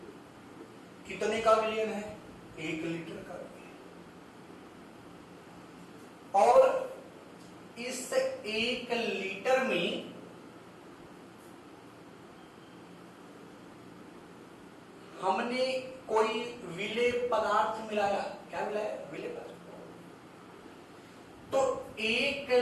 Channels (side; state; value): both; identical; correlation 1.00